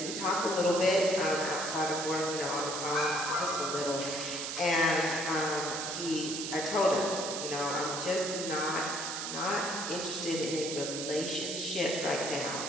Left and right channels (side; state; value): right; noise; hiss, 4 dB below the sound